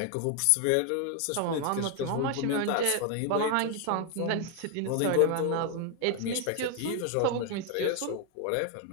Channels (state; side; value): different; both; correlation 0.01